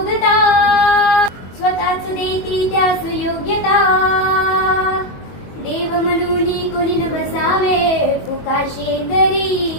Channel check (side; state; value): right; late; 22 ms